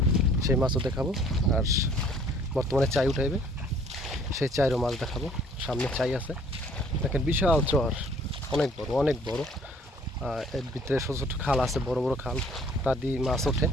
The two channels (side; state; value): both; normal; correlation 0.57